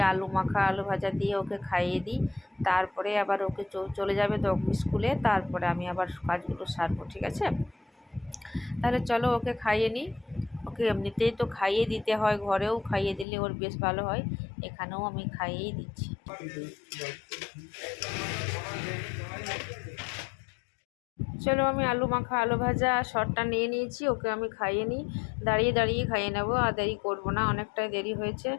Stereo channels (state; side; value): drops out; right; at 13.2 s